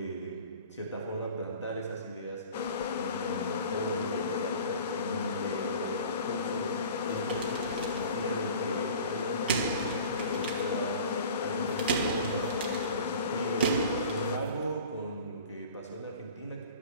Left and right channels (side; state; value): both; inverted; correlation -0.43